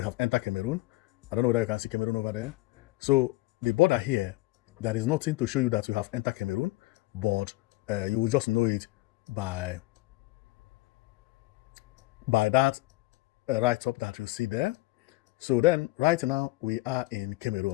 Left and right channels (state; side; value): quieter; right; 20.8 dB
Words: have entered Cameroon. I don't know whether you can see Cameroon over there. So the border here, there is nothing to show you that you have entered Cameroon, but you will just know it by that right up that you see there. So then, right now, we are in